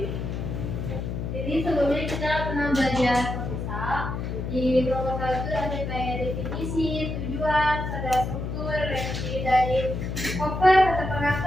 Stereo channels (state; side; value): noise; left; hum, 4 dB below the sound